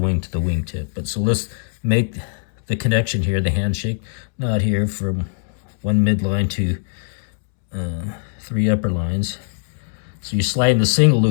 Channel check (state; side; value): silent; right; 65 dB below the other